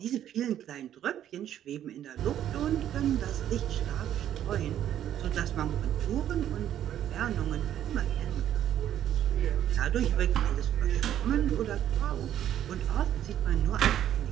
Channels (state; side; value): quieter; left; 11.0 dB